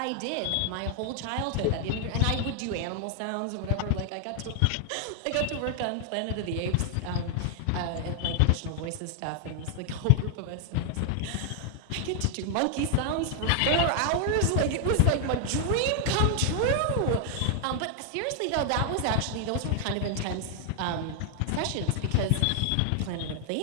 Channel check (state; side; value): different; both; correlation 0.00